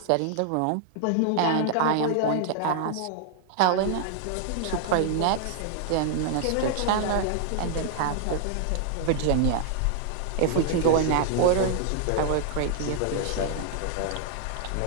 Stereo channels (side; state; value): both; different; correlation -0.01